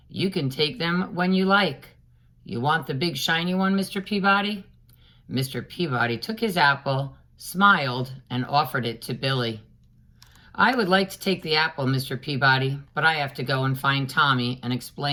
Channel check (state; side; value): identical; both; correlation 1.00